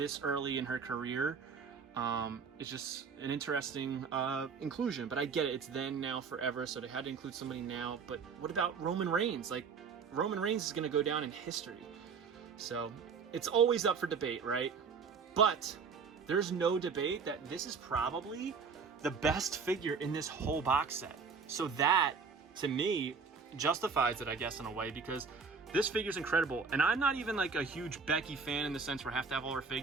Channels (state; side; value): quieter; left; 5.4 dB